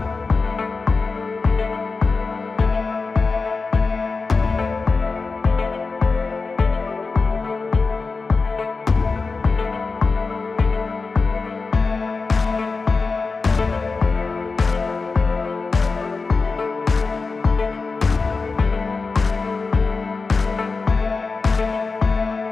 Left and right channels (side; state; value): right; quieter; 4.2 dB